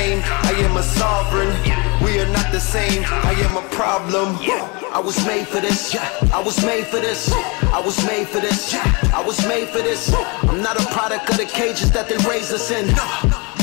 I am a sovereign. We are not the same, I am a problem. I was made for this, I was made for this. I was made for this, I was made for this. I'm not a product of the cages that they raised us in.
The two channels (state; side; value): quieter; right; 29.6 dB